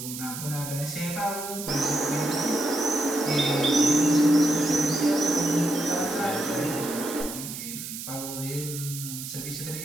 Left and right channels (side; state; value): right; noise; hiss, 8 dB below the sound